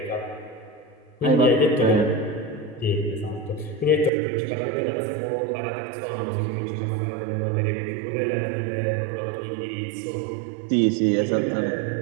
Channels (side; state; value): left; drops out; at 4.1 s